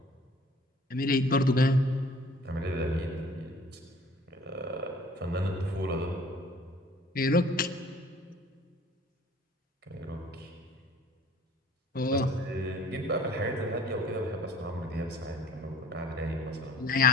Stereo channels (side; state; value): both; normal; correlation 0.52